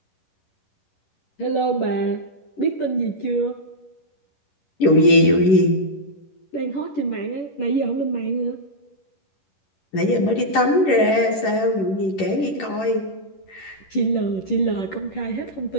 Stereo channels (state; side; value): late; right; 11 ms